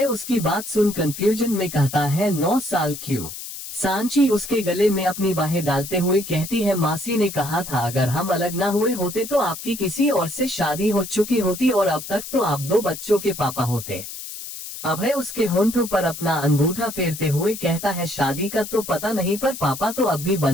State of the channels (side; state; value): left; noise; hiss, 10 dB below the sound